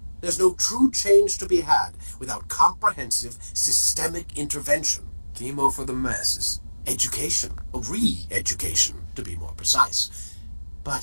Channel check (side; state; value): both; inverted; correlation -1.00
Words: There's no true change to be had without comprehensive, systemic intervention. Chemo for the masses. Education, re-education, to be more precise.